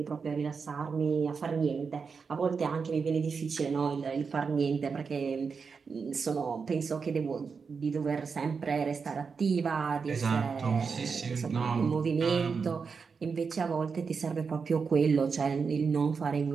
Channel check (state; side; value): quieter; left; 5.4 dB